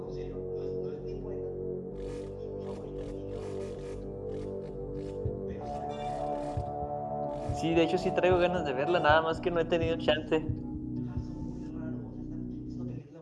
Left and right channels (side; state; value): both; identical; correlation 1.00